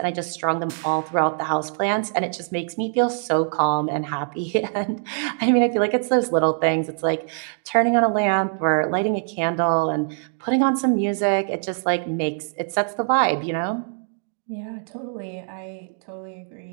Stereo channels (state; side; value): silent; left; digital silence